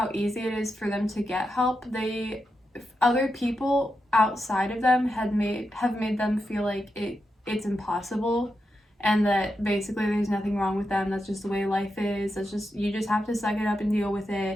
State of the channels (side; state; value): both; normal; correlation 0.87